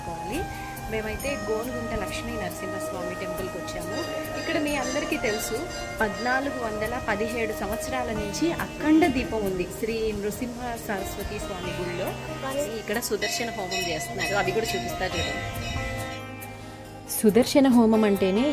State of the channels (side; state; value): both; identical; correlation 1.00